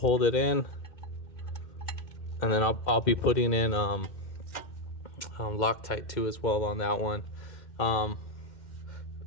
it in, and then I'll be putting in Loctite too as well on that one.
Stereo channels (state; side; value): late; right; 2.1 ms